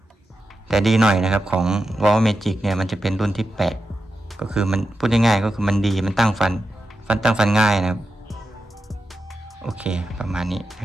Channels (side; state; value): both; normal; correlation 0.89